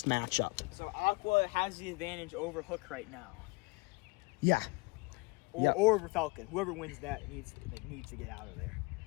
matchup. So Aqua has the advantage over Hook right now, Yeah. or over Falcon. Whoever wins that needs to get out of there.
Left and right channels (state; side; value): quieter; right; 27.0 dB